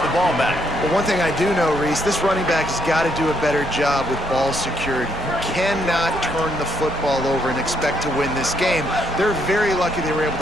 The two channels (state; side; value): normal; both; correlation 0.74